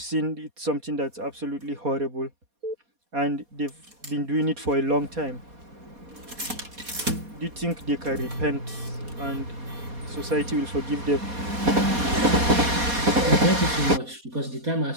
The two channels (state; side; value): late; left; 4.2 ms